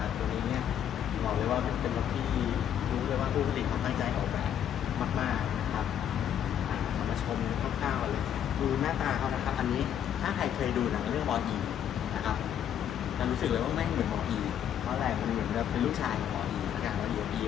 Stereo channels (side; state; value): right; quieter; 9.6 dB